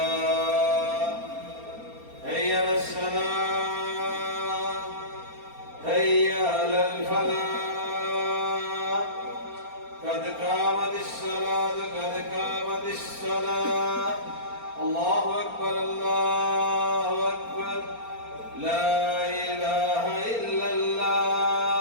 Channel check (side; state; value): left; late; 4.3 ms